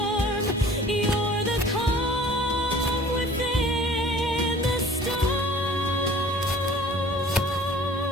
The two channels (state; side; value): normal; both; correlation 0.49